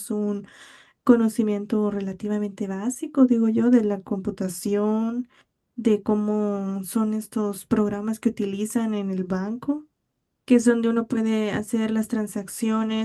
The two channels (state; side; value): identical; both; correlation 1.00